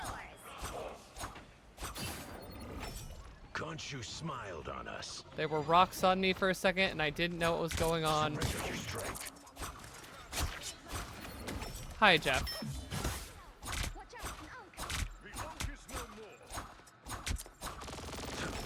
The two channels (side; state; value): both; identical; correlation 1.00